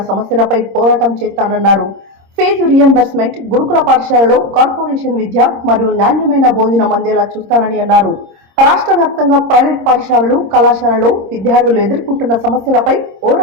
సమస్యలపై పోరాటం చేస్తానన్నారు. ఫీజు రియంబర్స్మెంట్, గురుకుల పాఠశాలలో కార్పొరేషన్ విద్య మరియు నాణ్యమైన భోజనం అందేలా చూస్తానని అన్నారు. రాష్ట్ర వ్యాప్తంగా ప్రైవేట్ పాఠశాలలు, కళాశాలలో విద్యార్థులు ఎదుర్కొంటున్న సమస్యలపై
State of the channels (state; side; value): late; left; 26 ms